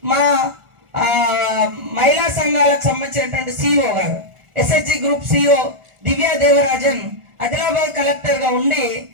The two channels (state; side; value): late; left; 1.4 ms